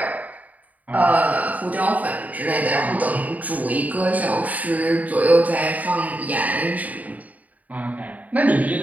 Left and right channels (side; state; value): left; late; 0.075 ms